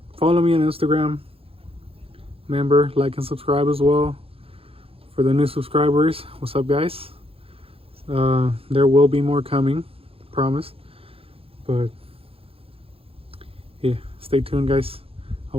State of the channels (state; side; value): late; left; 0.27 ms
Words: me on Instagram. Remember, like and subscribe as well. For the new subscribers, what's up, guys? There will be more coming, promise. But yeah, stay tuned, guys. I